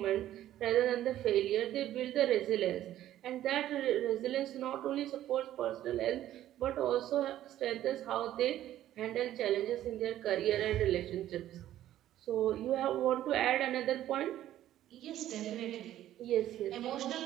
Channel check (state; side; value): quieter; left; 12.8 dB